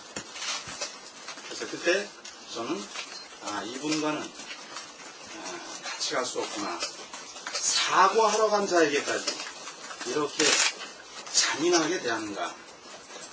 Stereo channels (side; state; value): both; identical; correlation 1.00